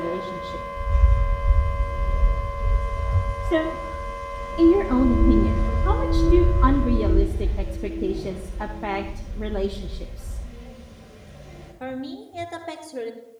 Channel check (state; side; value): identical; both; correlation 1.00